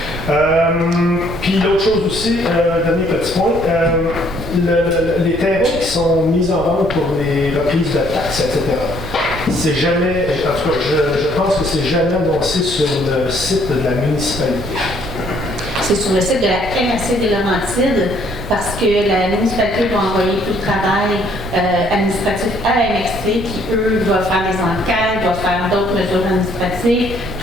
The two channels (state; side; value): noise; right; rumble, 10 dB below the sound